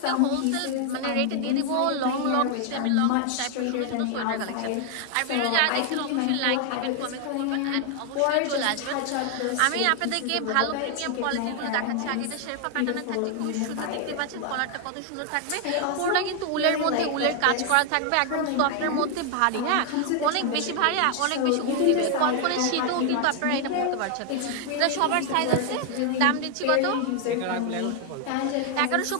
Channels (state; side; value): different; both; correlation 0.00